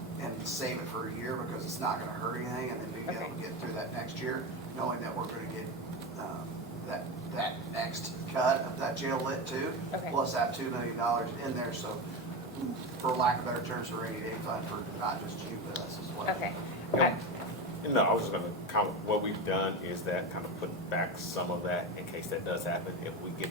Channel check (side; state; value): both; normal; correlation 0.19